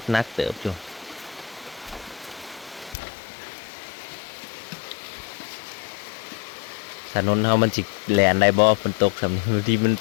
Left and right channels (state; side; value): drops out; right; at 3.0 s